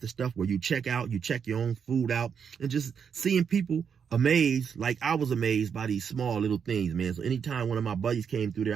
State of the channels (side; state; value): left; quieter; 7.0 dB